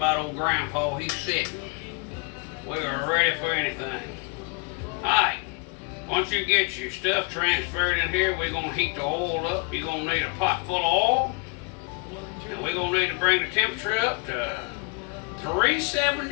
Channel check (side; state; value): right; quieter; 32.0 dB